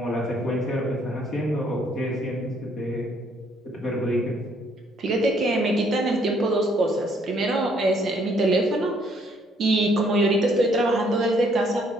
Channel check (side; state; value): both; normal; correlation 0.66